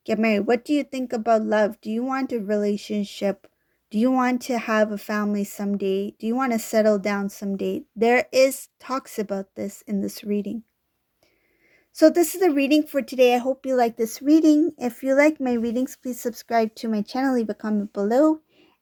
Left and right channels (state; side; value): identical; both; correlation 1.00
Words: get married? What do you think about love? Do you want a relationship? Do you want to have a family someday? Do you want to settle down someday? There is talks about this in this reading. So this is the reading for today. I hope you like this reading. If you like my readings, please subscribe to my channel, leave a comment below.